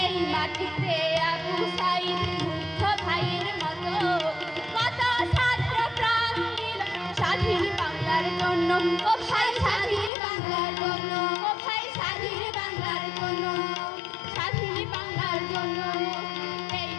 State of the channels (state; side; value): drops out; right; at 10.1 s